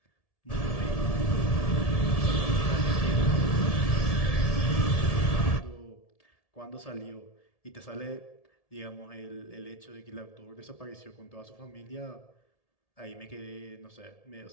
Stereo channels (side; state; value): right; late; 1.7 ms